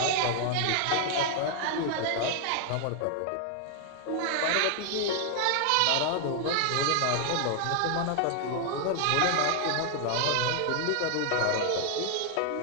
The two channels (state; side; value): different; both; correlation 0.00